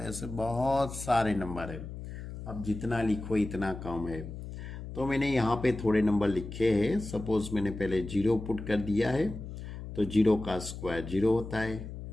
ऐसे बहुत सारे नंबर है। अब जितना लिखो इतना कम है, तो मैंने यहाँ पे थोड़े नंबर लिखे हैं। सपोज मैंने पहले 0 पुट कर दिया है, तो 0 का स्क्वायर 0 होता है।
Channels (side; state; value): left; noise; hum, 10 dB below the sound